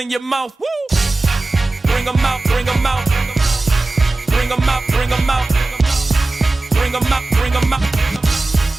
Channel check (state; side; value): quieter; left; 3.1 dB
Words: your mouth. Woo! Bring 'em out, bring 'em out. Bring 'em out, bring 'em out. Bring 'em out, bring 'em out.